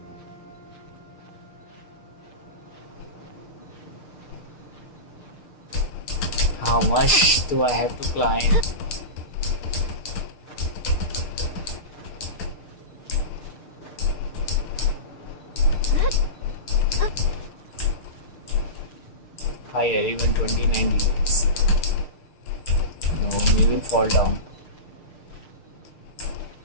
how much do I have to climb? Higher, even 29 degrees. No, we will fall down.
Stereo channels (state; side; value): late; right; 6.6 ms